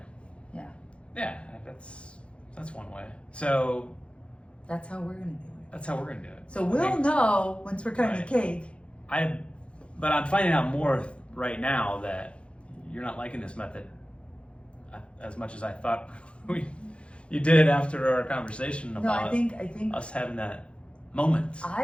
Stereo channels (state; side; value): late; right; 0.059 ms